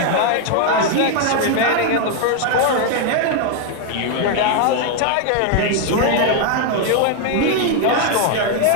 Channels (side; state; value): both; different; correlation 0.00